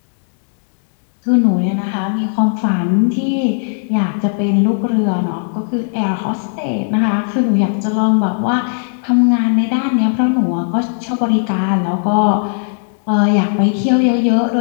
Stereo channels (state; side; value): silent; right; digital silence